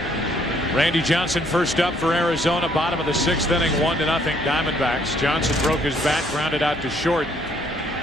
Randy Johnson first up for Arizona. Bottom of the 6th inning, 1-0 Diamondbacks. Johnson broke his bat, grounded out to short.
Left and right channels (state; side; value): normal; both; correlation 0.66